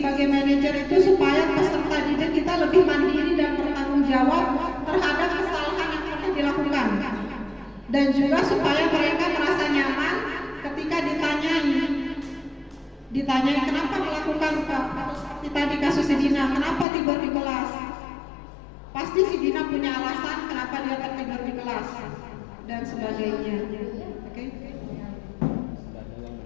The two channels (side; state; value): right; drops out; at 16.9 s